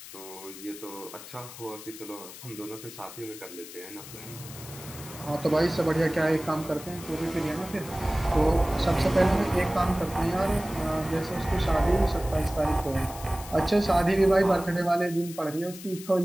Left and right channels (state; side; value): noise; left; hiss, 14 dB below the sound